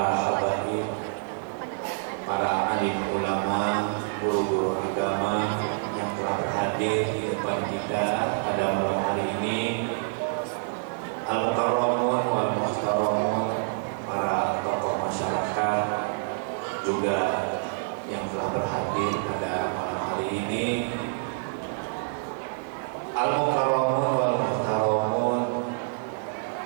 habaib, para alim ulama, guru-guru agama yang telah berhadir di depan kita pada malam hari ini. Al-mukarramun wal muhtaramun, para tokoh masyarakat juga yang telah berhadir pada malam hari ini. Al-mukarramun wal muhtaramun,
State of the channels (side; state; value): left; silent; 58 dB below the other